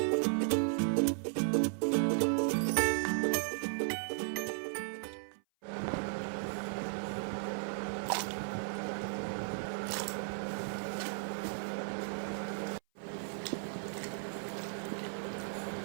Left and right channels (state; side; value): silent; left; 54 dB below the other